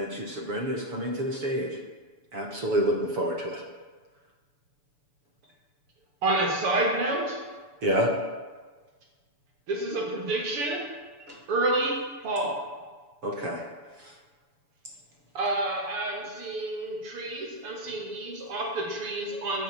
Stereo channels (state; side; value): late; left; 7.0 ms